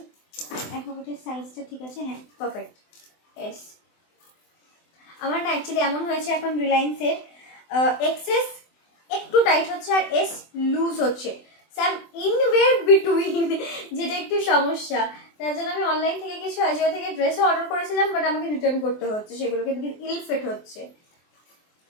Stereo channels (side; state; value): right; late; 24 ms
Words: এখন সাইজটা ঠিক আছে, হ্যাঁ পারফেক্ট। এস আমার না অ্যাকচুয়ালি এমন হয়েছে এখন রিলায়েন্সের এক্সেস একটু টাইট হচ্ছে আর এস লুজ হচ্ছে, স্যাম ইনওয়ের বিটুইন, যেটা একটু সমস্যা। তার জন্য আমি অনলাইন থেকে কিছু আজিও থেকে ড্রেসও অর্ডার করেছিলাম, বাট আমাকে রিটার্ন করতে হচ্ছে সেগুলোকে, বিকজ ইল ফিট হচ্ছে,